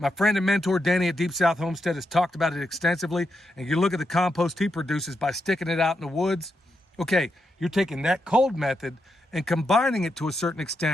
friend and mentor, Danny at Deep South Homestead, has talked about it extensively. And you look at the compost he produces by sticking it out in the woods. Okay, you're taking that cold method and combining it to a certain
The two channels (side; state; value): both; normal; correlation 0.84